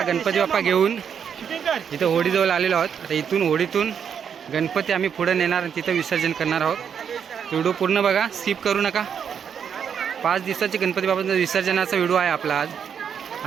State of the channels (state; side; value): quieter; left; 7.6 dB